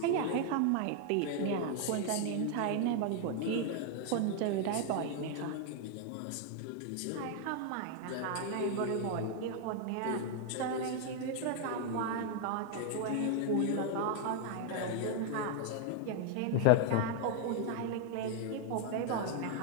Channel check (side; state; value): both; different; correlation 0.00